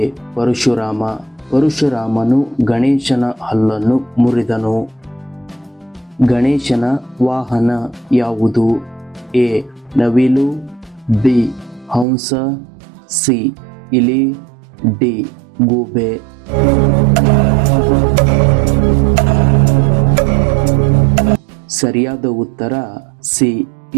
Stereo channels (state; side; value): drops out; left; at 12.1 s